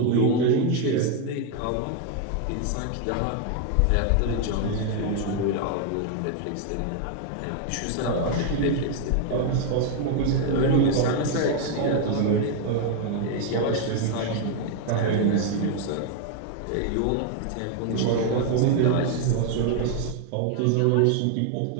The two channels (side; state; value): both; different; correlation 0.00